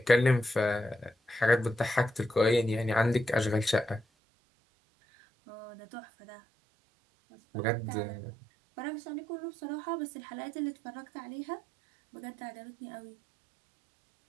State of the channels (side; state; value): left; drops out; at 4.0 s